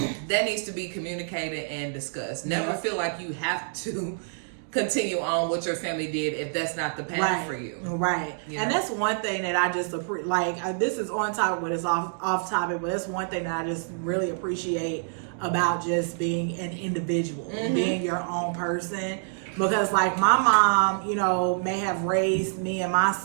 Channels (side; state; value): left; silent; digital silence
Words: that needs to be communicated and discussed. Never feel like you have to continue on what your family did if that's not the path for you. You and know? that's one thing that I just this is on topic, but it's off topic, but that's one thing that I just really appreciate about just being an individual, being your own person. Because like my mom, you know, may have raised me and my